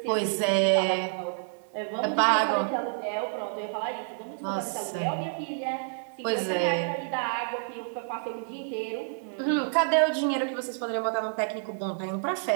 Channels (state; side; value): silent; left; 59 dB below the other